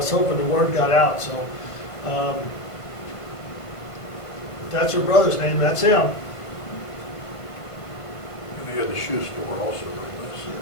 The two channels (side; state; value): right; late; 1.5 ms